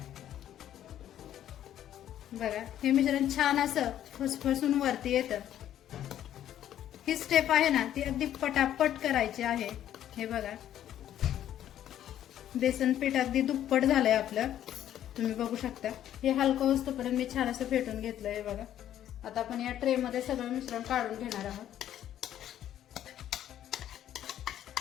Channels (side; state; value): right; quieter; 11.3 dB